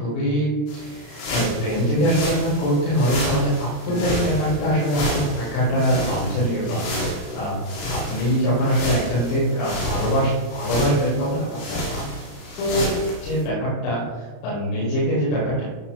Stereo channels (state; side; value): late; right; 34 ms